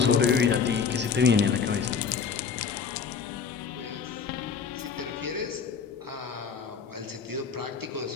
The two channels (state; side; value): quieter; right; 6.1 dB